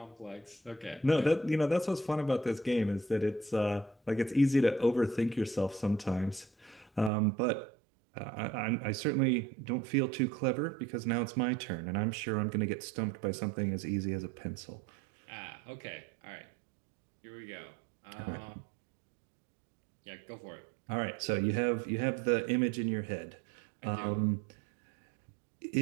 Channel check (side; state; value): left; drops out; at 7.1 s